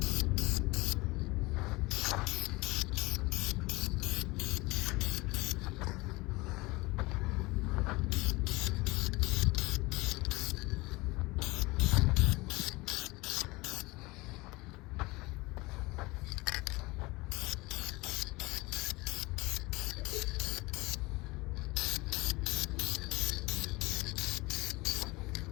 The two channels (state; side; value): quieter; right; 22.7 dB